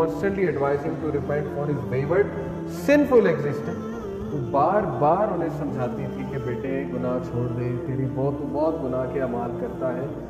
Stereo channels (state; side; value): identical; both; correlation 1.00